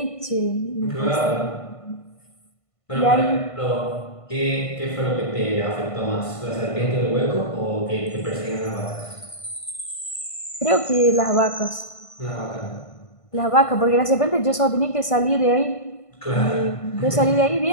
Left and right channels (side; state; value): right; late; 1.5 ms